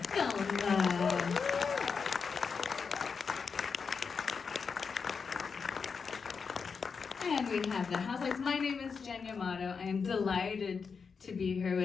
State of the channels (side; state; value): right; quieter; 5.6 dB